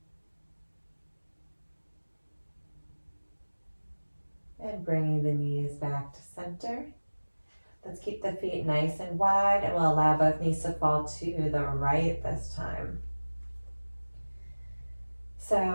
And bringing the knees back to center. Let's keep the feet nice and wide, and we'll allow both knees to fall to the right this time.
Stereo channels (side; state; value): both; inverted; correlation -1.00